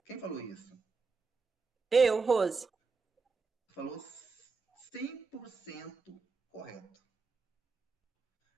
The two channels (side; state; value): left; quieter; 4.6 dB